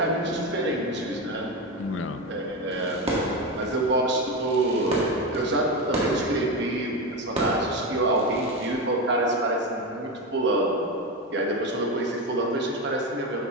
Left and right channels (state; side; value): normal; both; correlation 0.16